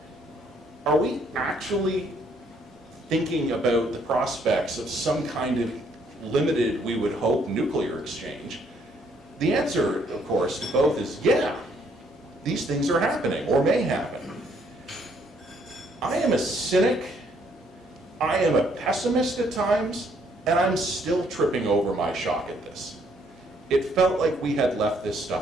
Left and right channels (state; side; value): normal; both; correlation 0.68